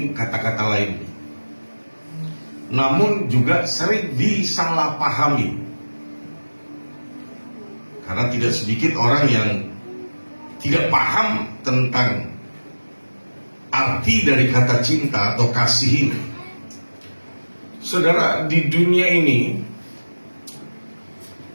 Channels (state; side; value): inverted; both; correlation -1.00